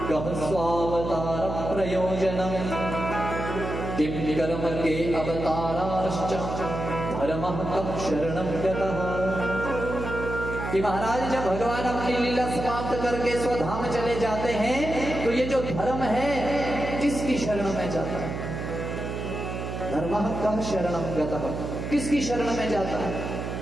कः स्वावतार प्रयोजनम् किम कर्म के अवताराश्च धर्मः कः शरणं गतः। कि महाराज जब भगवान अपनी लीला समाप्त करके स्वधाम चले जाते हैं तो ये जो धर्म है किसकी शरण में जाता है? धर्मः कः शरणं गतः, किसकी शरण में जाता है?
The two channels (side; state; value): right; noise; hum, 5 dB below the sound